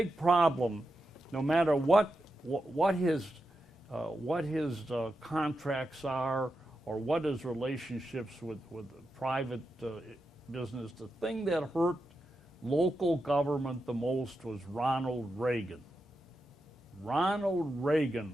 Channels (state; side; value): normal; both; correlation 0.88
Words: problem, no matter what his contracts are or what his relationships with private business, the thing that hurt local government the most was Ronald Reagan. Ronald Reagan